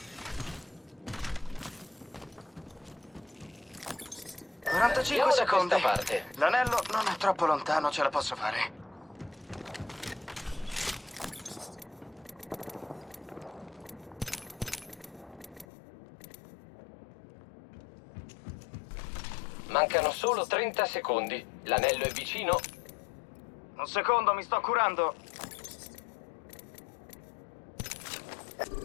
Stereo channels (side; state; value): right; drops out; at 15.7 s